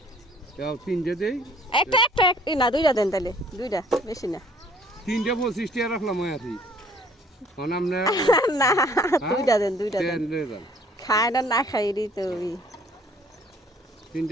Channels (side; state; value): both; normal; correlation 0.57